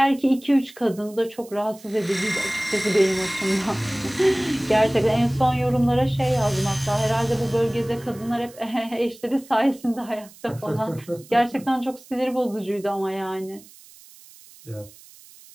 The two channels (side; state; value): right; noise; hiss, 22 dB below the sound